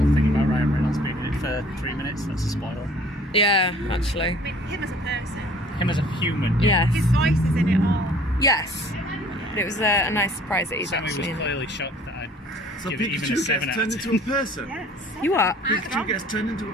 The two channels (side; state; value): both; normal; correlation 0.53